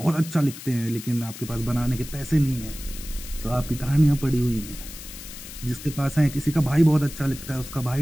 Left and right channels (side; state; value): left; noise; hiss, 13 dB below the sound